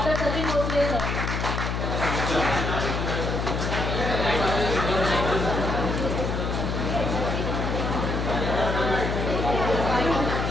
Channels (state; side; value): noise; left; hum, 1 dB below the sound